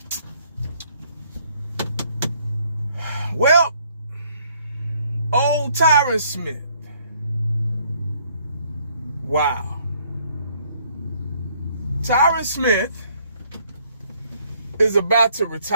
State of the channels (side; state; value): both; inverted; correlation -0.65